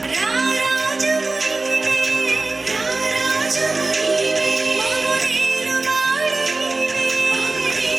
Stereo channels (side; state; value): left; quieter; 3.4 dB